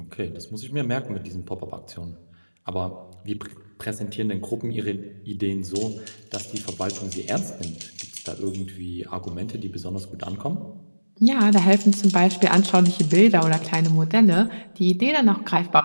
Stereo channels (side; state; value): both; inverted; correlation -1.00